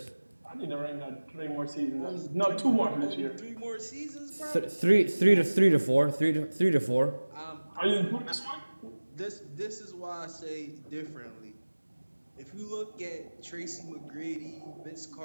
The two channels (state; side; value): inverted; both; correlation -1.00